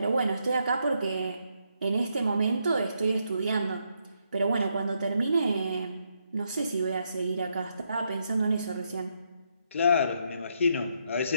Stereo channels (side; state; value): both; inverted; correlation -0.78